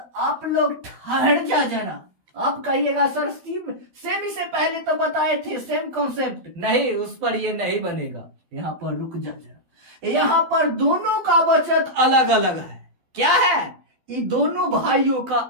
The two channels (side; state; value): left; late; 12 ms